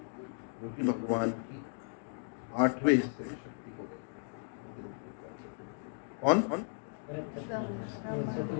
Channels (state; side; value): silent; right; digital silence